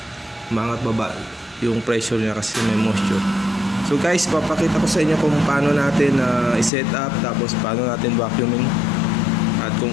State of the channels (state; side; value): drops out; right; at 6.7 s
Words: yung pressure niya kasi may moisture. So guys, papakita ko sa inyo kung paano natin i-set up, tapos paano natin vacuuming at